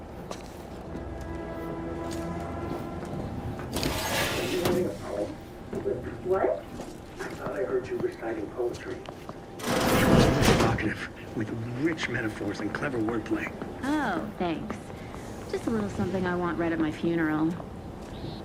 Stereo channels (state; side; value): identical; both; correlation 1.00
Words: Are you writing a poem? What? I thought I heard you reciting poetry. Evocative, with rich metaphors and clever wordplay. Oh, thanks. Just a little something I want read at my funeral.